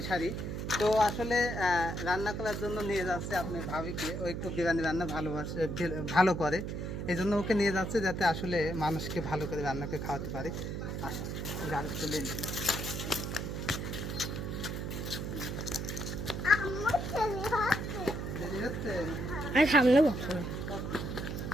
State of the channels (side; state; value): right; noise; hum, 4 dB below the sound